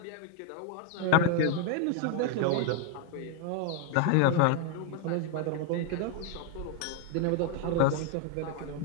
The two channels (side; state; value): both; different; correlation 0.01